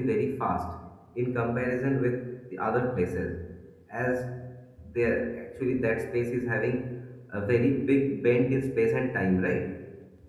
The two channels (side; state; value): both; identical; correlation 1.00